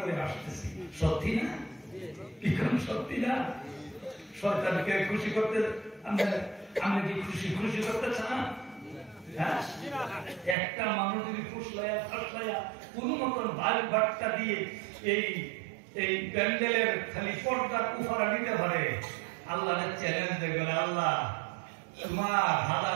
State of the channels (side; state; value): left; drops out; at 10.6 s